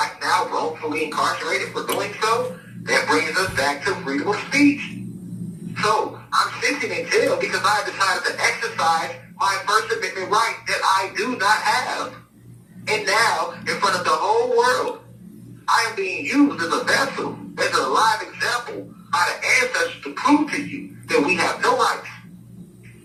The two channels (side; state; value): both; identical; correlation 1.00